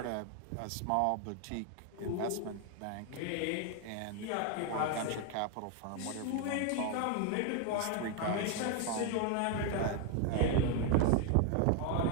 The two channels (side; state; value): both; different; correlation 0.01